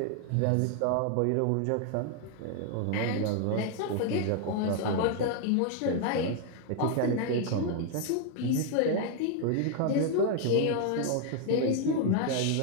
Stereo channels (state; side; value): different; both; correlation 0.00